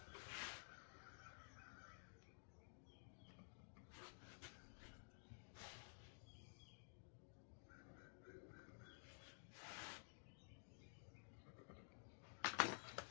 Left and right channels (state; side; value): silent; right; digital silence